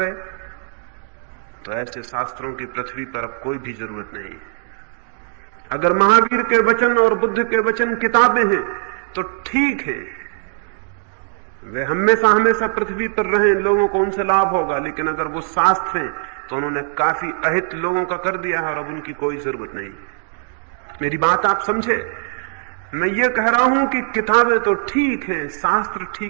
है तो ऐसे शास्त्रों की पृथ्वी पर अब कोई भी जरूरत नहीं। अगर महावीर के वचन और बुद्ध के वचन किताबें हैं तो ठीक है, वे हमेशा हमेशा पृथ्वी पर रहे, लोगों को उनसे लाभ होगा। लेकिन अगर वो शास्त्र हैं तो उन्होंने काफी अहित लोगों का कर दिया है और अब उनकी कोई जरूरत नहीं। मेरी बात आप समझे? मैं ये कह रहा हूं कि किताबें तो ठीक हैं, शास्त्र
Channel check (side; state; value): left; silent; digital silence